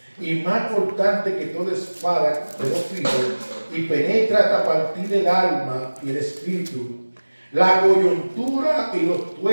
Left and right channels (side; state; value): both; inverted; correlation -1.00